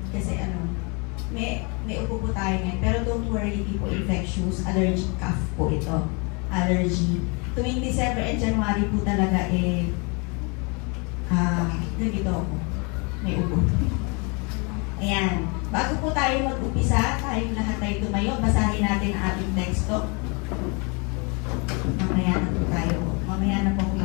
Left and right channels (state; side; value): quieter; right; 32.3 dB